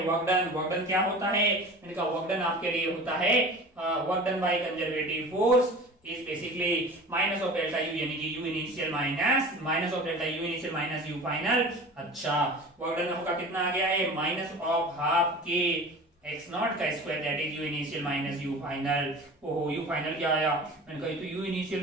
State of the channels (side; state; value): both; normal; correlation 0.38